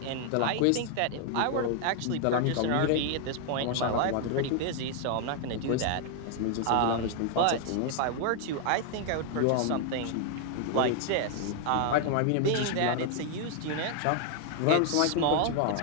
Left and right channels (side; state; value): both; different; correlation 0.00